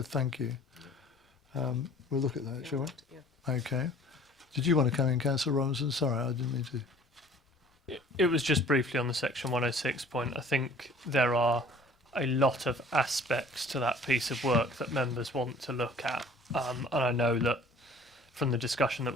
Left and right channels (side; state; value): both; normal; correlation 0.51